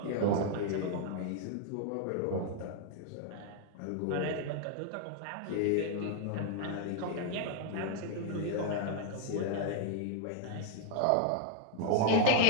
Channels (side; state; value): both; different; correlation 0.00